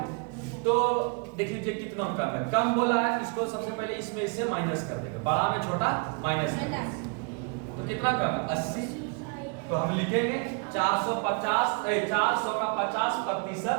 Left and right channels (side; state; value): left; quieter; 35.8 dB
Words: तो देख लीजिए कितना कम है, कम बोला है, इसको सबसे पहले इसमें इससे माइनस कर देंगे, बड़ा में छोटा माइनस कर देंगे। तो कितना कम है, 80। तो हम लिखेंगे 400 का